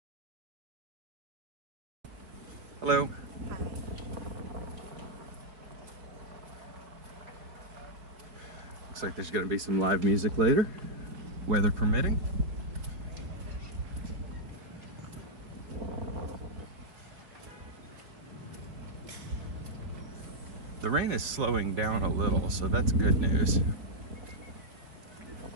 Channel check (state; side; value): late; left; 4.3 ms